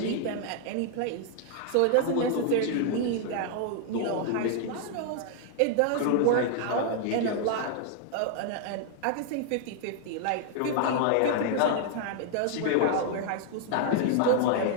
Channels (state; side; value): different; both; correlation 0.00